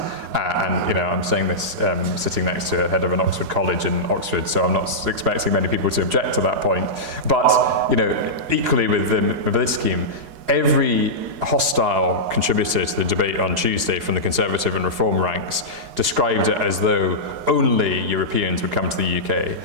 And, you know, I'm saying this sitting next to a head of an Oxford college in Oxford, so I'm not expecting many people to object to that point. But, you know, equally with the mobility scheme, every hostile contributor to the debate on Tuesday from the Conservative and Reform ranks described it as though only Europeans would come to the UK.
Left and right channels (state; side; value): late; left; 4.8 ms